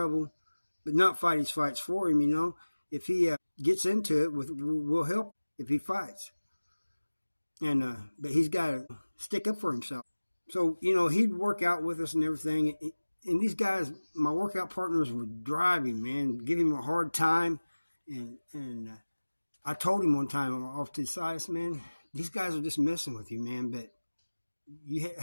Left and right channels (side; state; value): both; inverted; correlation -1.00